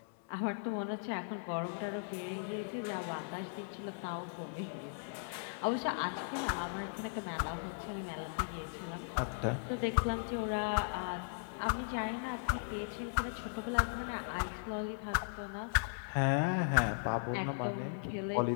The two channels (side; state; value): right; silent; digital silence